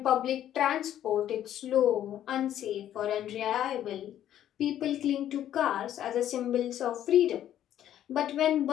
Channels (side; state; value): right; quieter; 11.3 dB